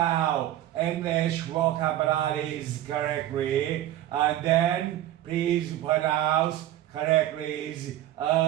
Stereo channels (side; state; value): left; quieter; 13.3 dB